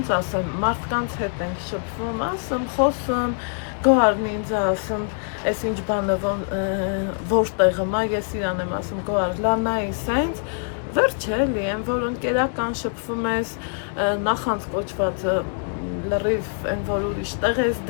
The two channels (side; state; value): right; silent; 63 dB below the other